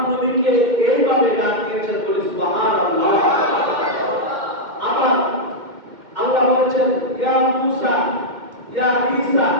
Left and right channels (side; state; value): left; late; 2.1 ms